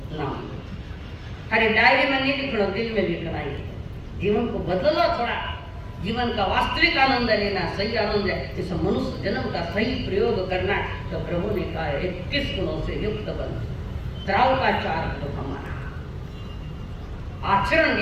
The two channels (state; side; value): identical; both; correlation 1.00